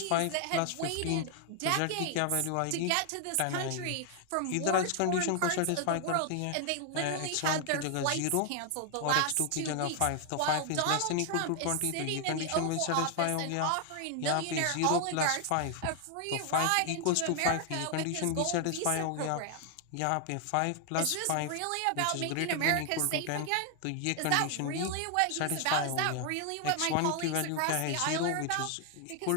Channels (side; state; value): both; different; correlation 0.00